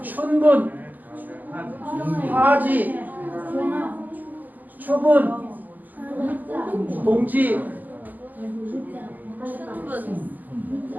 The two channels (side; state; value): left; late; 0.084 ms